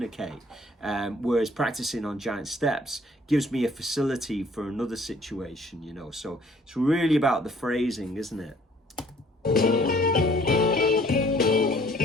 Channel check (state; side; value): normal; both; correlation 0.58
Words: Whereas practicing on giant steps gives me a facility for another situation, you know. So it's really about the phrasing, isn't it?